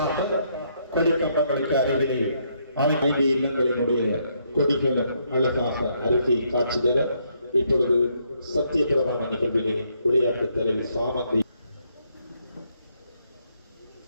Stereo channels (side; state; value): both; inverted; correlation -0.73